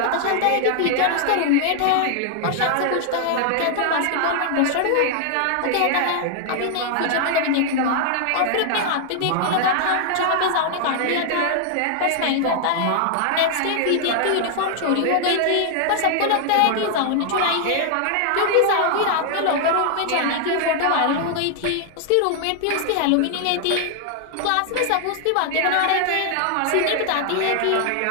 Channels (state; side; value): different; both; correlation 0.00